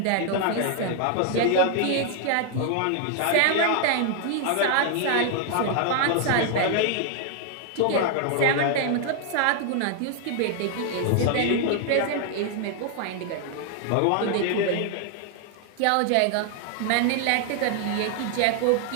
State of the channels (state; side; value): different; both; correlation 0.00